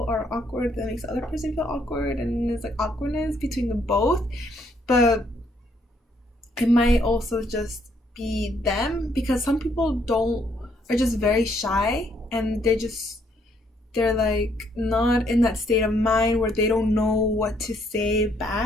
are awkward, that makes the other person feel awkward, and there's like awkwardness between them both. But it might also just be them, because some people don't are just very shy, and they're like not in that state of mind where they don't know what to say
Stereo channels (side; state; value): both; normal; correlation 0.70